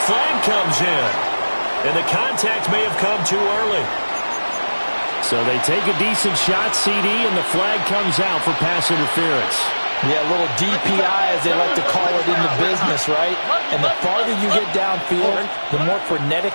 flag comes in. And the contact may have come too early. So they take a decent shot, CD, and the flag comes out for pass interference. Yeah, a little DPI, as they like to call it in the business, right? And the farther you get downfield, the more frenetic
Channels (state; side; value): inverted; both; correlation -1.00